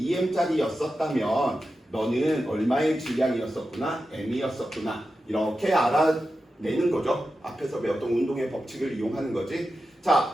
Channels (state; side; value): normal; both; correlation 0.91